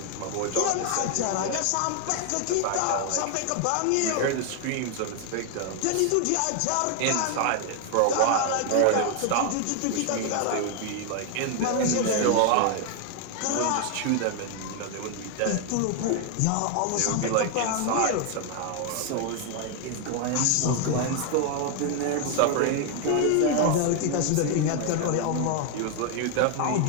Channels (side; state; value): both; different; correlation 0.00